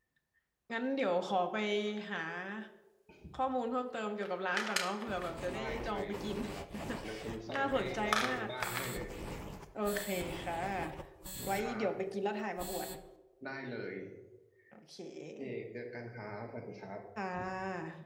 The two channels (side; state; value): both; identical; correlation 1.00